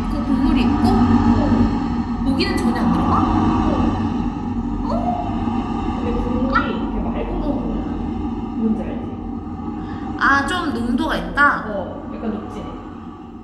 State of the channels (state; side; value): identical; both; correlation 1.00